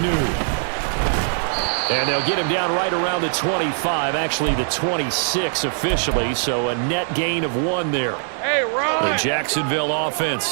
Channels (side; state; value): left; silent; 65 dB below the other